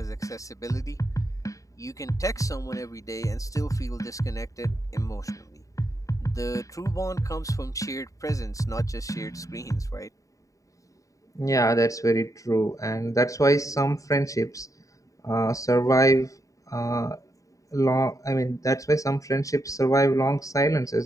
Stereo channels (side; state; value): right; late; 0.16 ms